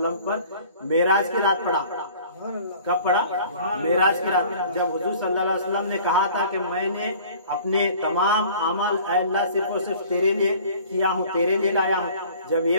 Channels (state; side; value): inverted; both; correlation -0.49